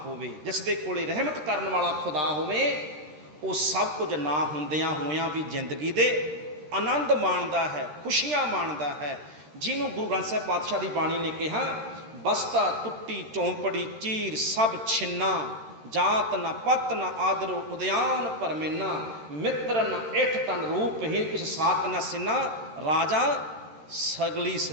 ਹੋਵੇ, ਜਿਸ ਦੇ ਕੋਲੇ ਰਹਿਮਤ ਕਰਨ ਵਾਲਾ ਖੁਦਾ ਹੋਵੇ, ਉਹ ਸਭ ਕੁਝ ਨਾ ਹੁੰਦਿਆਂ ਹੋਇਆਂ ਵੀ ਜ਼ਿੰਦਗੀ ਦੇ ਆਨੰਦ ਮਾਣਦਾ ਹੈ, ਖੁਸ਼ੀਆਂ ਮਾਣਦਾ ਹੈ। ਜਿਹਨੂੰ ਗੁਰੂ ਗ੍ਰੰਥ ਸਾਹਿਬ ਪਾਤਸ਼ਾਹ ਦੀ ਬਾਣੀ ਨੇ ਕਿਹਾ, ਬਸਤਾ ਟੁੱਟੀ ਚੌਂਪੜੀ ਚੀਰ ਸਭ ਛਿੰਨਾ, ਜਾਤ ਨਾ ਪਤ ਨਾ ਆਦਰੋ ਉਦਿਆਨ ਪਰਮੇਨਾ, ਮਿੱਤਰ ਨਾ ਇਠ ਤਨ ਰੂਪਹੀਨ ਕਿਸ ਸਾਤ ਨਾ ਸਿੰਨਾ, ਰਾਜਾ ਸਗਲੀ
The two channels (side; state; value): left; late; 13 ms